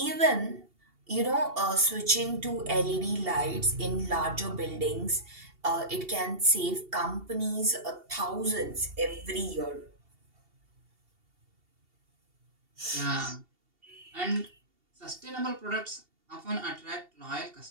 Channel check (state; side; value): late; left; 2.7 ms